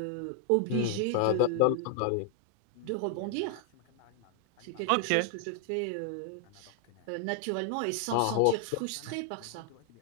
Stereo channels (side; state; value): both; different; correlation 0.00